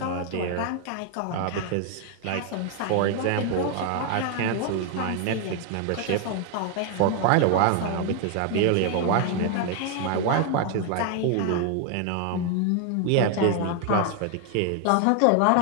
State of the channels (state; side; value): different; both; correlation 0.00